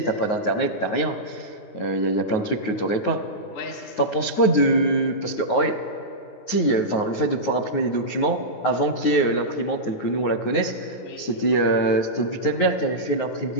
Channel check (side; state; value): right; late; 9.4 ms